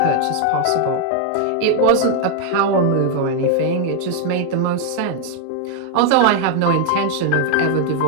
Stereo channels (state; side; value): different; both; correlation 0.00